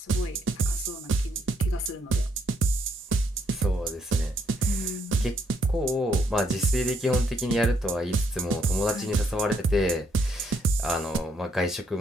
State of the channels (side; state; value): both; normal; correlation 0.72